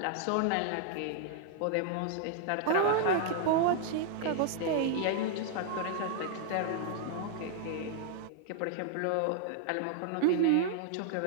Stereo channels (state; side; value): different; both; correlation 0.00